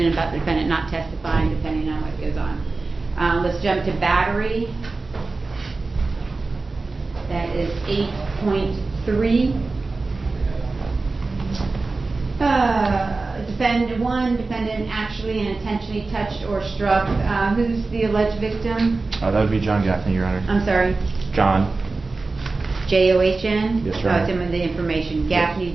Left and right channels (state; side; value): quieter; left; 3.7 dB